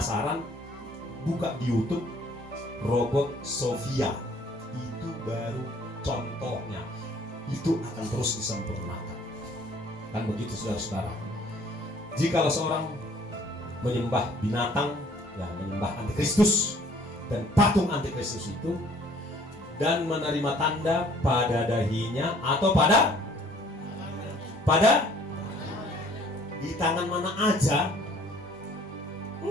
buka di YouTube robot Sofia. Itu baru contohnya. Itu akan terus disempurnakan. Kan begitu saudara-saudara. Jikalau seorang menyembah binatang, ya menyembah antikristus dan patung antikristus itu, dan menerima tanda pada dahinya atau pada di tangan mana aja.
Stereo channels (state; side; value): normal; both; correlation 0.57